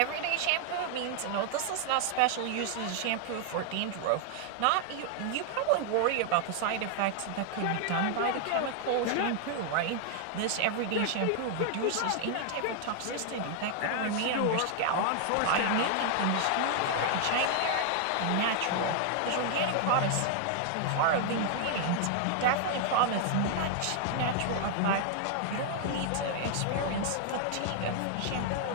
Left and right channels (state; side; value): different; both; correlation 0.00